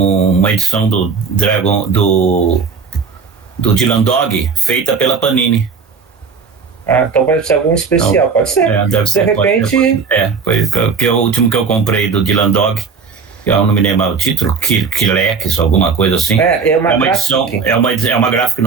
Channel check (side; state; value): left; quieter; 5.4 dB